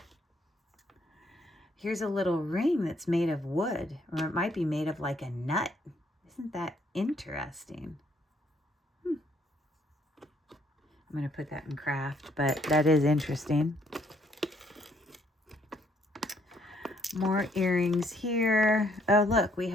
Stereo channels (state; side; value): normal; both; correlation 0.68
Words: Here's a little ring that's made of wood, or it might be made of like a nut. Isn't that interesting? I'm going to put that in craft, but that is interesting. More earrings here. Oh, look, we